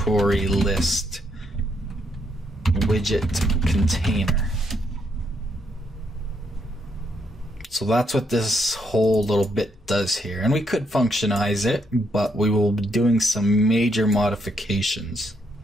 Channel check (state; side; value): normal; both; correlation 0.75